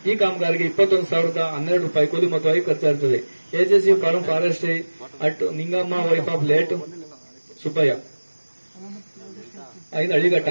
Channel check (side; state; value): both; inverted; correlation -1.00